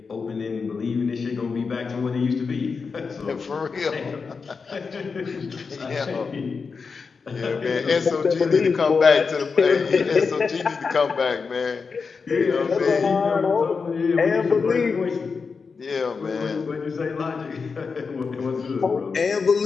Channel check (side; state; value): right; quieter; 5.1 dB